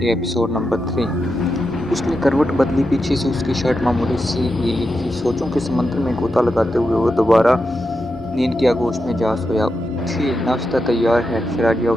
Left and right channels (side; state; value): both; normal; correlation 0.87